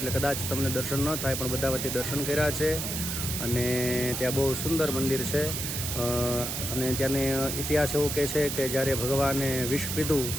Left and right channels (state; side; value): noise; right; hiss, 3 dB below the sound